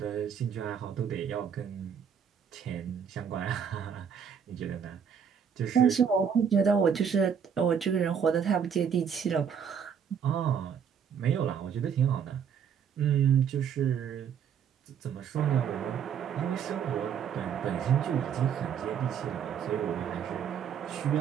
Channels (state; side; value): quieter; left; 7.5 dB